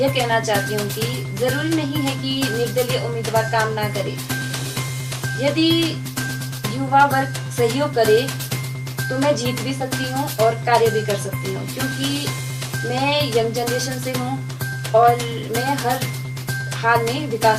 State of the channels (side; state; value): both; identical; correlation 1.00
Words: कहना चाहती हूँ कि जरूरी नहीं है कि निर्दलीय उम्मीदवार काम ना करे। यदि युवा वर्ग सहयोग करे तो मैं जीत भी सकती हूँ और कार्य भी कर सकती हूँ, क्योंकि मैं यंग जनरेशन से हूँ और मैं हर हाल में